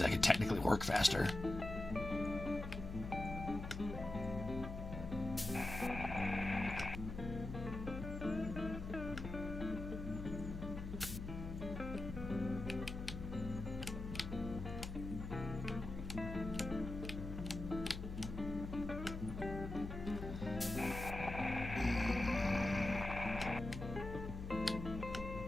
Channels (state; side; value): noise; left; hum, 7 dB below the sound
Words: I could technically work faster.